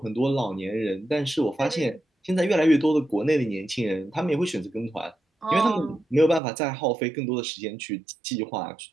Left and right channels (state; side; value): drops out; left; at 6.4 s